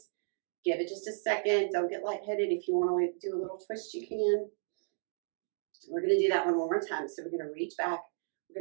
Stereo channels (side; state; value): left; silent; digital silence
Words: Give it just a second. Don't get lightheaded. If you want to do a little twist, you can. We're going to do that one more time. So we're going to reach back.